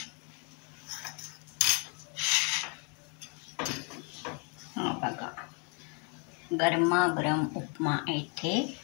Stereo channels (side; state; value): right; quieter; 35.8 dB